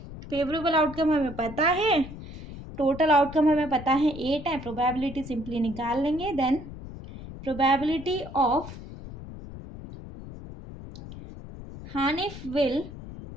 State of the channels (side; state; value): left; noise; rumble, 13 dB below the sound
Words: फेवरेबल आउटकम हमें पता है, टोटल आउटकम हमें पता है 8 है, प्रोबेबिलिटी सिंपली निकाल लेंगे। Then probability of Hanif will